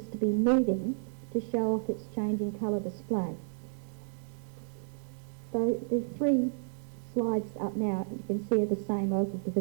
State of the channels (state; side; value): silent; left; digital silence